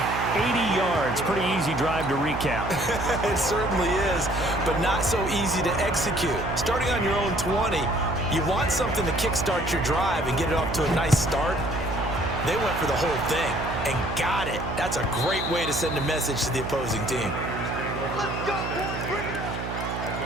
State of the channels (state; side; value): noise; right; hum, 6 dB below the sound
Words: 80 yards. Pretty easy drive to recap. It certainly is, but not so easy to execute. Starting on your own 20, you want something to kickstart your drive and get it off to a nice start. They went for the whole thing and got it. That's a great way to send a message to the opposing team. Let's go, boys. Bring it. At